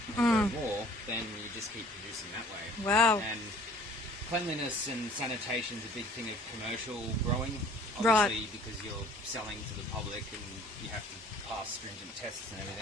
and grow more, then you just keep producing that way. Wow. And cleanliness and sanitation is a big thing of commercial growing, Right. obviously, because you're selling to the public and you have to pass stringent tests and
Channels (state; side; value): normal; both; correlation 0.52